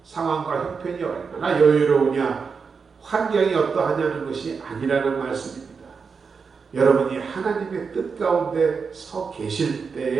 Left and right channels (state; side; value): quieter; left; 5.4 dB